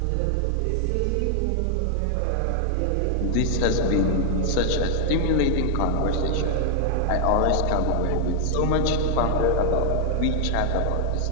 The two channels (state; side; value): different; both; correlation 0.00